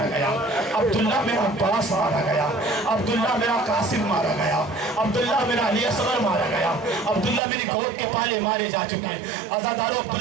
گیا, عبداللہ میرا عباس مارا گیا, عبداللہ میرا قاسم مارا گیا, عبداللہ میرا علی اصغر مارا گیا, عبداللہ میری گود کے پالے مارے جا چکے ہیں. عزادارو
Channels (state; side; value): drops out; left; at 7.4 s